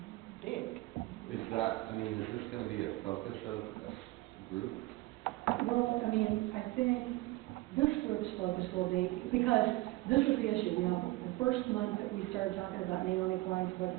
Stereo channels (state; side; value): quieter; left; 19.3 dB